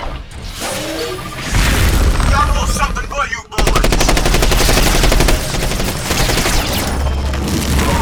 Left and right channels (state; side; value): identical; both; correlation 1.00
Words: Got a little something for you, boys.